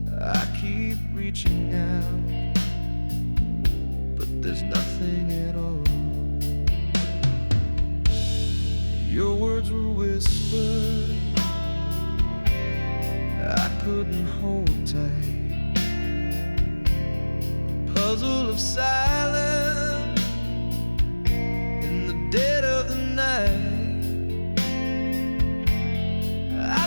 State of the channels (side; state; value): both; inverted; correlation -1.00